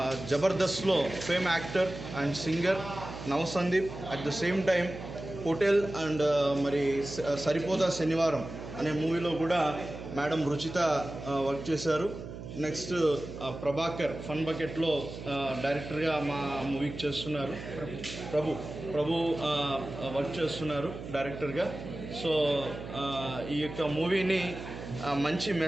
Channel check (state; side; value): noise; right; hum, 10 dB below the sound